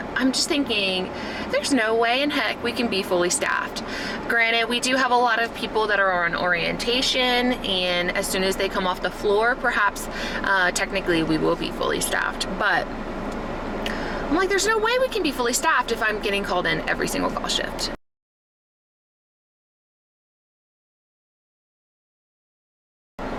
I'm just thinking there's no way in heck we can be fully staffed. Granted, we do have a lot of people that are on orientation, and as soon as they come off the floor, perhaps technically we will be fully staffed, but I'm like, there's no way we can be fully staffed if I'm getting called in every single call shift.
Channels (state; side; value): identical; both; correlation 1.00